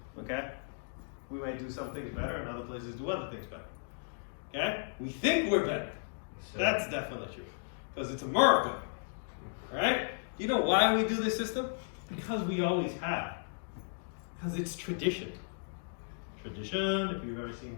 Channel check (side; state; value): right; silent; digital silence